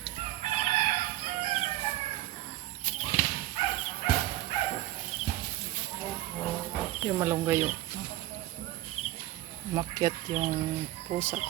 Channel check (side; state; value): left; quieter; 15.3 dB